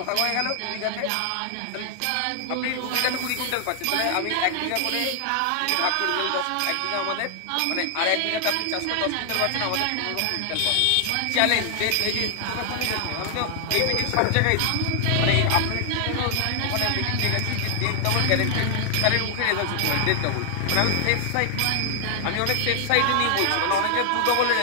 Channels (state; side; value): different; both; correlation 0.00